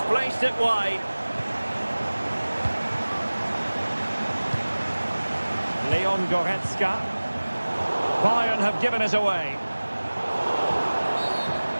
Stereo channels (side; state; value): both; inverted; correlation -1.00